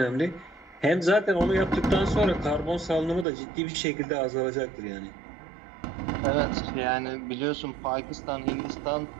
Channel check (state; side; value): drops out; left; at 3.2 s